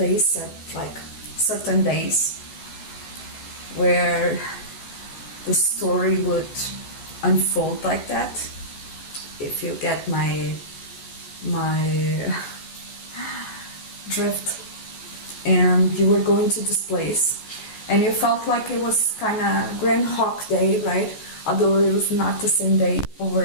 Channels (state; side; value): late; right; 14 ms